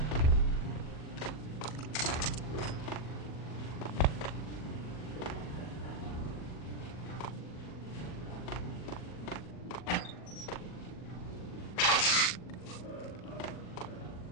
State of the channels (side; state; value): right; late; 40 ms